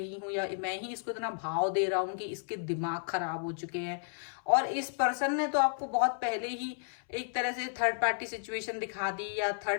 हूँ, या मैं ही इसको इतना भाव दे रहा हूँ कि इसके दिमाग खराब हो चुके हैं। और इस पर्सन ने तो आपको बहुत पहले ही एक तरह से थर्ड पार्टी सिचुएशन दिखा दी, या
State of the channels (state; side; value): silent; right; 56 dB below the other